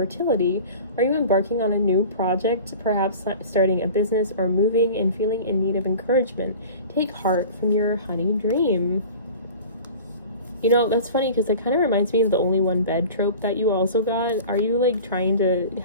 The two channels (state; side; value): inverted; both; correlation -0.39